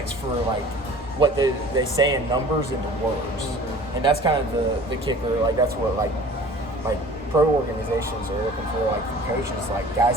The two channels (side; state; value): both; normal; correlation 0.45